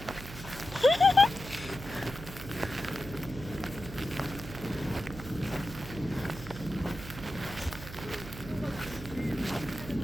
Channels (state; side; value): noise; right; hum, 12 dB below the sound